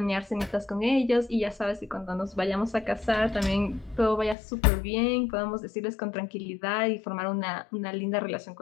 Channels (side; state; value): right; drops out; at 4.4 s